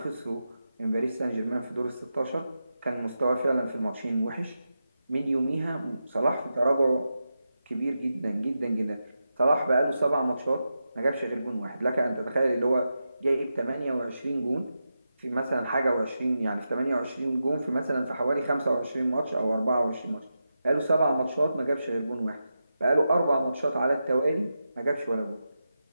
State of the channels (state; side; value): inverted; both; correlation -0.89